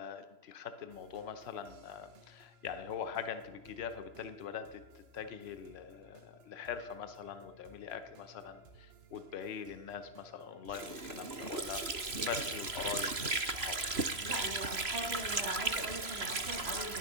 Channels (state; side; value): late; left; 3.0 ms